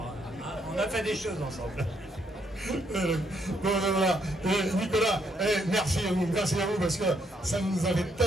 on a fait des choses ensemble. Bon, voilà. Nicolas, merci à vous parce que ça nous avait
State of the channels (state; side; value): normal; both; correlation 0.73